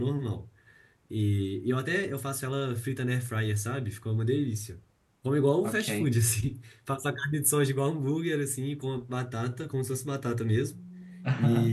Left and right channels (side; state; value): both; identical; correlation 1.00